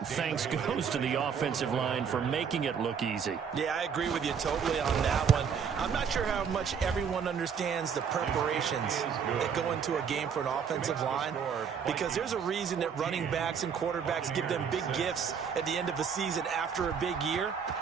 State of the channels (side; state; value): left; quieter; 6.9 dB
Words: thanks goes to the offensive line for making it look easy. Yeah, I agree with you totally on that one. I'm not sure how much everyone understands the preparations that go into a game for an offensive line, because there's a reason that running backs and quarterbacks give them big gifts at the end of a season after a big year.